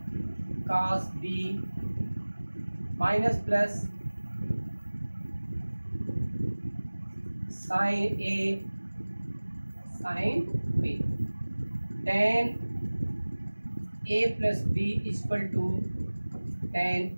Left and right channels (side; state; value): both; inverted; correlation -1.00